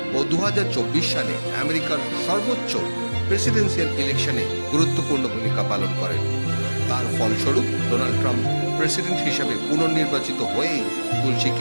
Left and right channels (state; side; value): inverted; both; correlation -1.00